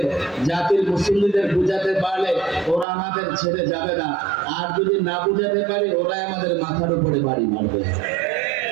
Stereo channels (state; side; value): drops out; left; at 2.9 s